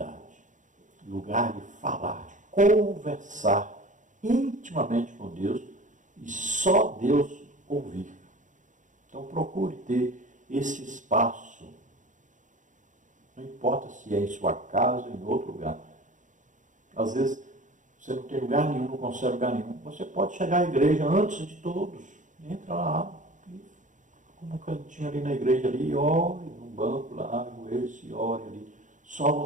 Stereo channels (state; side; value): late; left; 0.37 ms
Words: lugar de falar, de conversar intimamente com Deus e só Deus ouvir. Então procure ter esse espaço. Não importa se é em sua casa ou em outro lugar. Às vezes você não tem lugar nenhum, não consegue lugar nenhum. Você pode chegar à igreja antes de todos. Entra lá, como um cantinho ali na igreja ali, ore no banco lá, ajoelhe-se e ore ali. Só